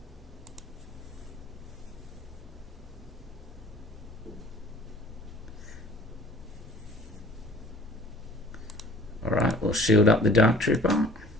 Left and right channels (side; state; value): both; normal; correlation 0.50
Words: Alright, we'll shield up the Dark Trooper.